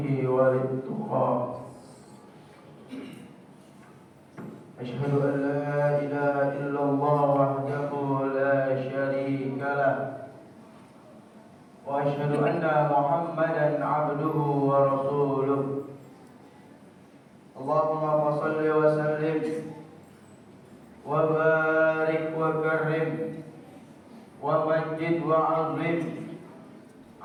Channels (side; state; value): both; identical; correlation 1.00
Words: wa littuqa. Asyhadu an la ilaha illallah wahdahu la syarika lah wa asyhadu anna Muhammadan abduhu wa rasuluh. Allahumma shalli wa sallim wa barik wa karim wa majid wa azim